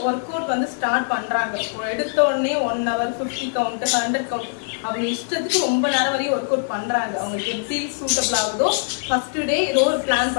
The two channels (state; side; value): silent; right; 58 dB below the other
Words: ஒர்க் அவுட் வந்து ஸ்டார்ட் பண்றாங்க. எடுத்த உடனே 1 hour 50 கவுண்ட் 100 கவுண்ட் அவங்க இஷ்டத்துக்கு ரொம்ப நேரம் வரையும் ஒர்க் அவுட் பண்றாங்க. அவங்களுக்கு எப்படி சூட்டபிள் ஆகுதோ ஃபர்ஸ்ட் டே ஏதோ ஒரு பிளான்